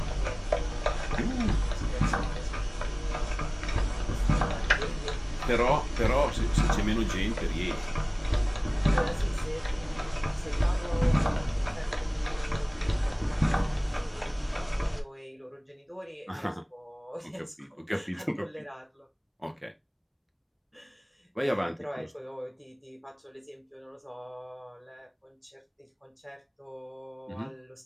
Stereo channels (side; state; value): both; identical; correlation 1.00